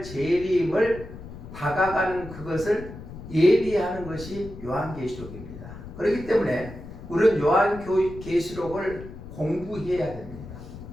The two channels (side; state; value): left; noise; rumble, 13 dB below the sound